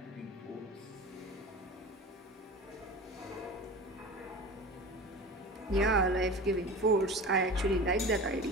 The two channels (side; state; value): both; normal; correlation 0.34